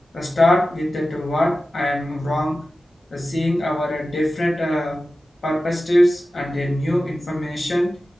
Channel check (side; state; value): both; normal; correlation 0.94